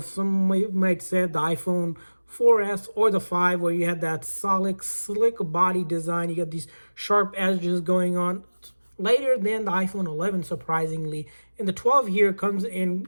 some, you might say, the iPhone 4S or the 5, where you had that solid, slick body design. You got these sharp edges going on. Later than the iPhone 11, surprisingly. And the 12 here comes in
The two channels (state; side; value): inverted; both; correlation -1.00